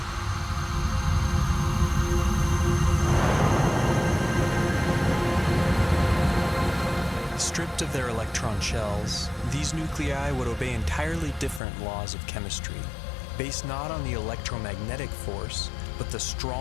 Stripped of their electron shells, these nuclei would obey entirely different laws of chemistry, based not on the electromagnetic force, but the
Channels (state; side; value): drops out; right; at 11.6 s